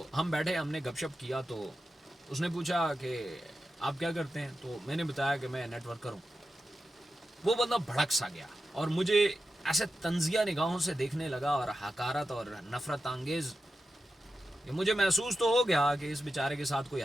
हम बैठे, हमने गपशप किया। तो उसने पूछा कि आप क्या करते हैं, तो मैंने बताया कि मैं नेटवर्कर हूँ। वो बंदा भड़क सा गया और मुझे ऐसे तंजिया निगाहों से देखने लगा और हकारत और नफरत अंगेज। मुझे महसूस तो हो गया कि इस बेचारे के साथ कोई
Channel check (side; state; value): both; normal; correlation 0.91